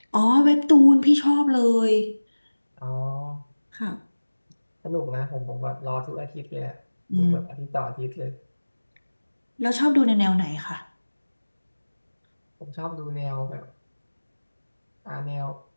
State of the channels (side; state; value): both; inverted; correlation -1.00